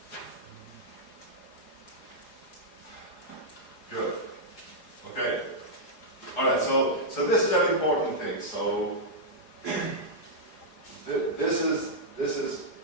Good. Okay. All right. So this is an important thing. So this is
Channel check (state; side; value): late; right; 4.8 ms